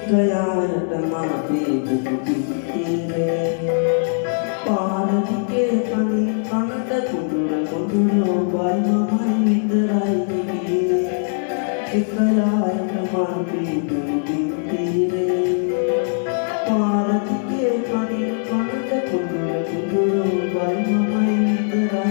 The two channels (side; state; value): right; silent; 61 dB below the other